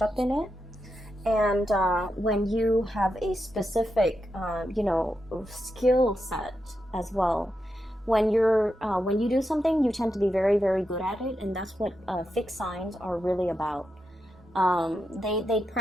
up in it. And when you have a specific, skill set as well, when you do something, you tend to be very, very good at it, and that's what fixed signs are really about. They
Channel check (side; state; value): both; normal; correlation 0.86